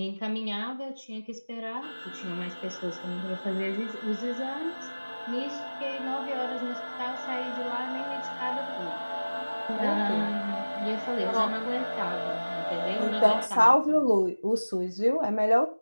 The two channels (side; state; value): both; inverted; correlation -1.00